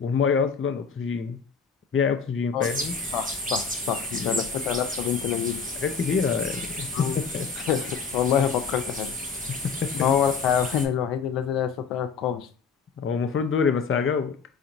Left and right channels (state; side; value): quieter; right; 5.9 dB